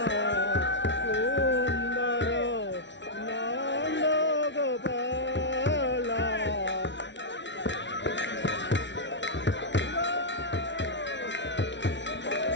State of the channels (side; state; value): right; late; 0.52 ms